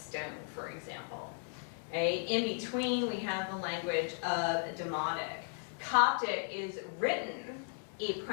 for example. Okay? In between, we have the language of Demotic. Coptic is written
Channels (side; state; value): right; silent; 54 dB below the other